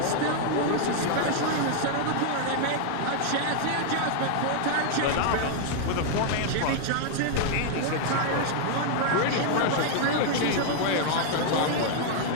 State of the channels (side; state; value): both; different; correlation 0.00